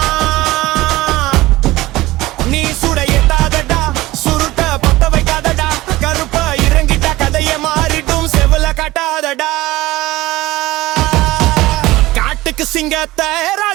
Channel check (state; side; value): quieter; left; 18.3 dB